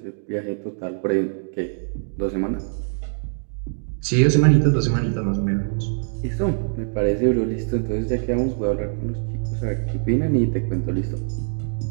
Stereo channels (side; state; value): left; silent; digital silence